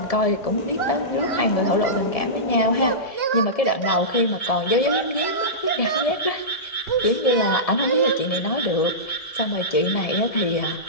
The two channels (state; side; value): late; right; 1.7 ms